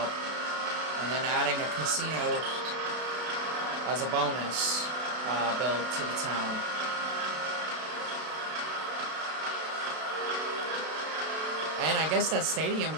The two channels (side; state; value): left; late; 32 ms